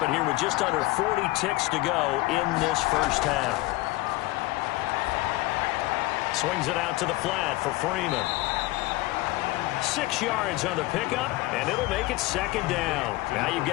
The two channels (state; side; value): quieter; right; 20.1 dB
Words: it here with just under 40 ticks to go in this first half. Swings it out to the flat for Freeman. 6 yards on the pickup, and it'll make it 2nd down. Now you've